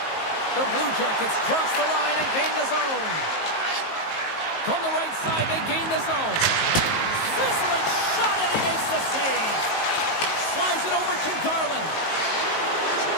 The Blue Jackets cross the line and gain the zone. From the right side, they gain the zone. Sizzling shot, and he makes the save. Slides it over to Garland.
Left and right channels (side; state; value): right; late; 19 ms